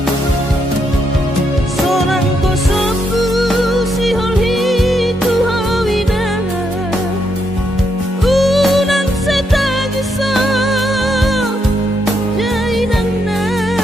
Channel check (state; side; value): normal; both; correlation 0.78